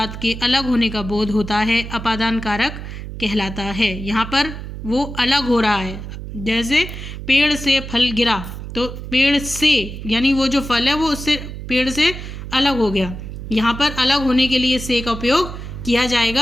के अलग होने का बोध होता है अपादान कारक कहलाता है। यहाँ पर वो अलग हो रहा है। जैसे पेड़ से फल गिरा, तो पेड़ से यानी वो जो फल है वो उससे पेड़ से अलग हो गया। यहाँ पर अलग होने के लिए से का उपयोग किया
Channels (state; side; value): noise; right; hum, 9 dB below the sound